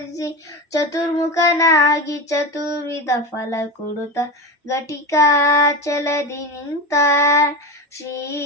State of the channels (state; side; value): normal; both; correlation 0.21